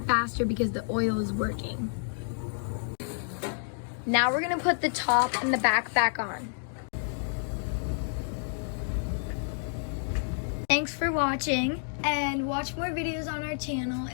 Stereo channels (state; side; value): silent; right; digital silence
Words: faster because the oil is working. Now we're gonna put the top and the back on. Thanks for watching, and watch more videos on our channel.